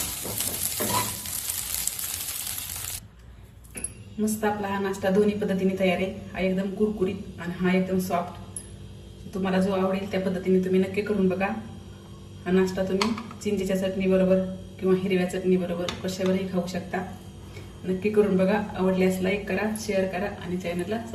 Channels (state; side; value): identical; both; correlation 1.00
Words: मस्त आपला हा नाश्ता दोन्ही पद्धतीने तयार आहे. हा एकदम कुरकुरीत आणि हा एकदम सॉफ्ट. तुम्हाला जो आवडेल त्या पद्धतीने तुम्ही नक्की करून बघा. हा नाश्ता तुम्ही चिंचेच्या चटणी बरोबर किंवा हिरव्या चटणी बरोबर कशावरही खाऊ शकता. नक्की करून बघा. आवडल्यास लाईक करा, शेअर करा आणि चॅनलला